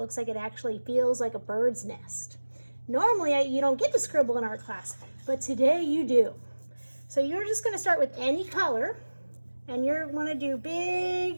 like it actually feels like a bird's nest. Normally, you don't get to scribble in art class, but today you do. So you're just going to start with any color, and you're going to do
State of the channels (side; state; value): both; inverted; correlation -1.00